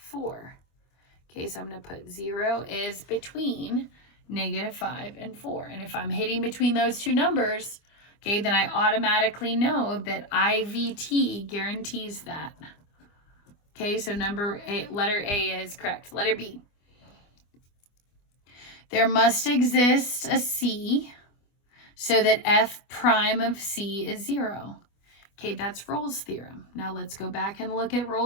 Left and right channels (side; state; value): right; late; 25 ms